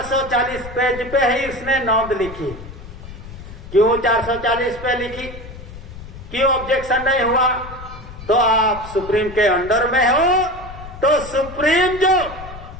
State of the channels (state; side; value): noise; left; rumble, 14 dB below the sound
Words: पेज पे ही इसने नोंद लिखी। क्यों 440 पे लिखी? क्यों ऑब्जेक्शन नहीं हुआ? तो आप सुप्रीम के अंडर में हो, तो सुप्रीम जो